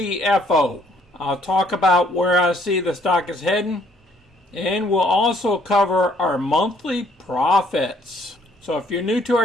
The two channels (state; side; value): normal; both; correlation 0.64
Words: I'll talk about where I see the stock is heading, and we'll also cover our monthly profits. So if you're new to